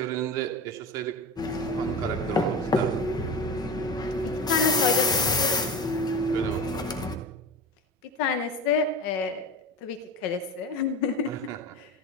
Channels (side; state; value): both; normal; correlation 0.28